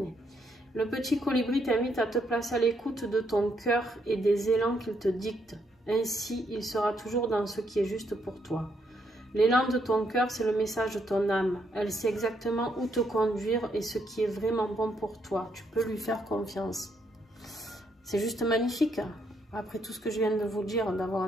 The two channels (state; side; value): normal; both; correlation 0.75